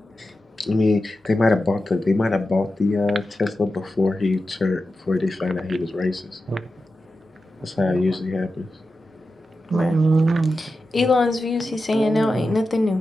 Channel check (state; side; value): normal; both; correlation 0.91